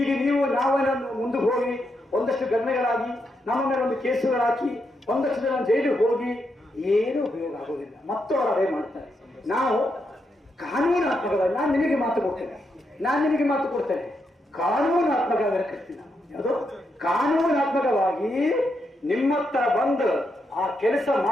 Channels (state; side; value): normal; both; correlation 0.82